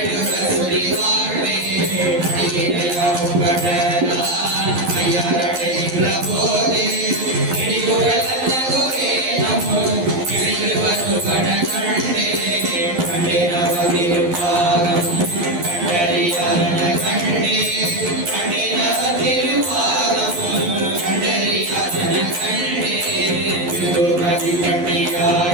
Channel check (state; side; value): late; left; 11 ms